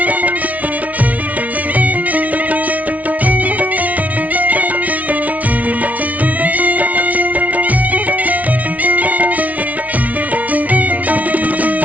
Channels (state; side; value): late; left; 0.070 ms